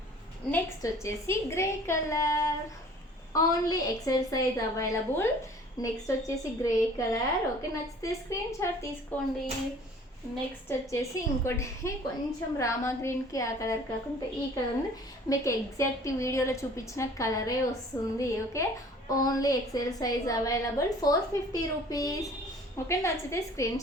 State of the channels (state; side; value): normal; both; correlation 0.50